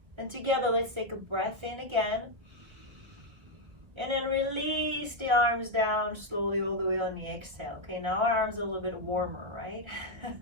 And together, let's take a breath in again. And then release the arms down slowly all the way on the exhale. Okay, now our arms are a little bit warmer, right?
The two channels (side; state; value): left; late; 1.5 ms